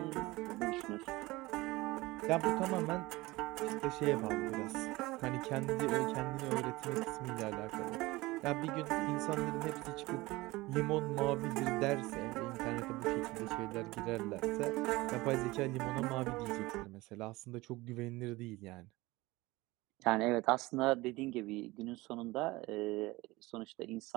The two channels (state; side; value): quieter; left; 20.8 dB